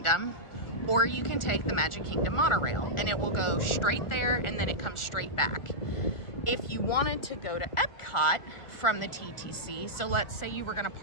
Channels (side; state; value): right; late; 1.4 ms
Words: or you can take the Magic Kingdom monorail, and it will go straight there and then it comes straight back. If you wanted to go to Epcot from the TTC, so let's say you were gonna